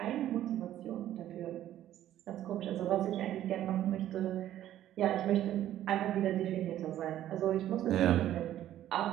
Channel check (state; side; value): quieter; left; 12.4 dB